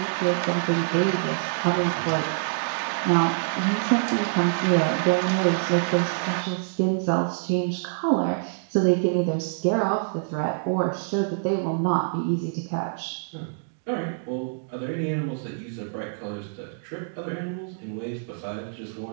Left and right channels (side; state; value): left; silent; digital silence